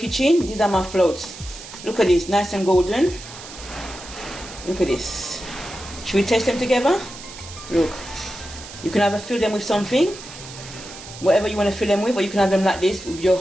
these are my floats. Look at this, nice and golden. Look at this. Should we taste them together? Look. You can either fill them with something, whatever you want to fill them with, or you can have them like this with your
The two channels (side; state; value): right; noise; hiss, 15 dB below the sound